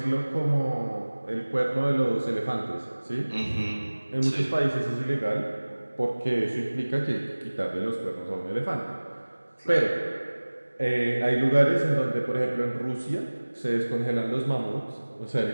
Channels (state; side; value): inverted; both; correlation -1.00